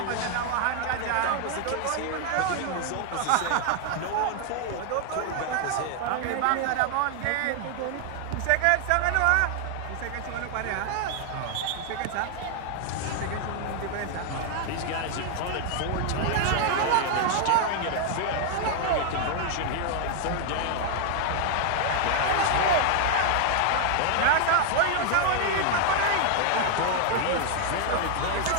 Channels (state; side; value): different; both; correlation 0.00